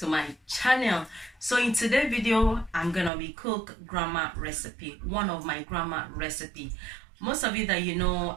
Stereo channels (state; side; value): drops out; left; at 3.1 s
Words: my channel. So in today's video, I'm gonna be cook grandma recipe, one of my grandma recipe. Most of you that you know,